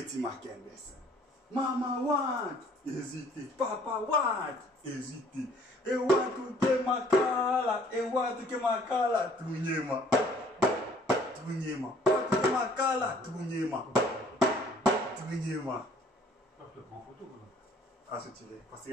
Makembe. Maman want hésiter, papa want hésiter. Et want to ke makala, et want to ke makala, tunyema, tunyema, want to ke makala, tunyema, tunyema. Ah, c'est tiré. Parce que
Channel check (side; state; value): both; normal; correlation 0.57